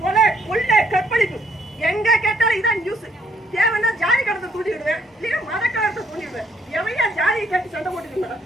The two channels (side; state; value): both; normal; correlation 0.69